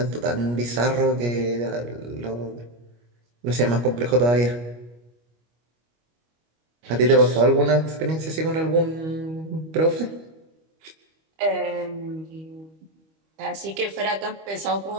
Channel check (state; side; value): late; left; 25 ms